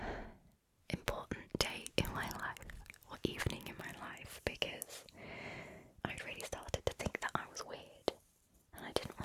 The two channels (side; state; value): both; identical; correlation 1.00